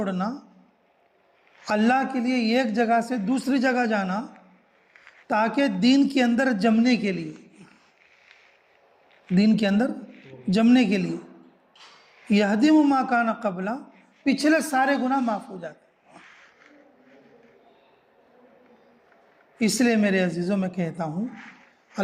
اللہ کے لیے ایک جگہ سے دوسری جگہ جانا تاکہ دین کے اندر جمنے کے لیے، دین کے اندر جمنے کے لیے، یہدم ما کان قبلہ، پچھلے سارے گناہ معاف ہو جاتے. اس لیے میرے عزیزوں میں کہتا ہوں،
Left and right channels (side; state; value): both; identical; correlation 1.00